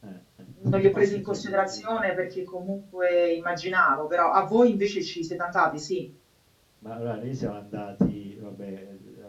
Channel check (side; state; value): both; identical; correlation 1.00